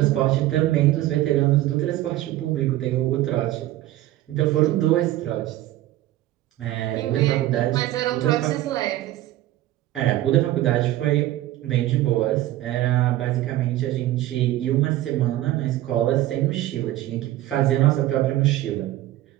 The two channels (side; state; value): left; quieter; 15.1 dB